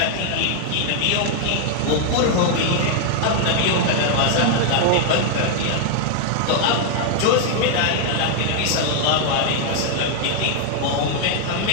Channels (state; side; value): different; both; correlation 0.00